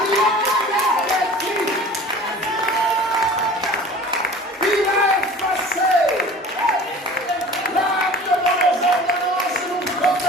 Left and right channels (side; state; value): both; normal; correlation 0.42